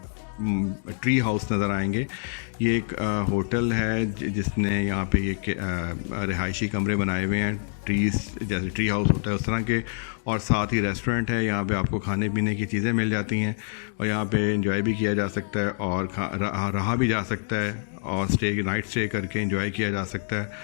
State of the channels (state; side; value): silent; right; digital silence